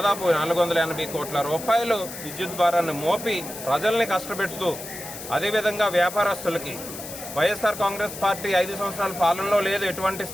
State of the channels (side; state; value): left; noise; hiss, 11 dB below the sound